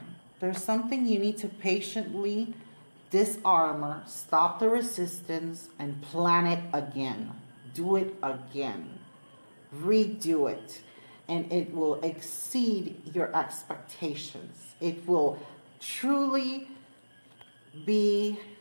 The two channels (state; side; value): inverted; both; correlation -1.00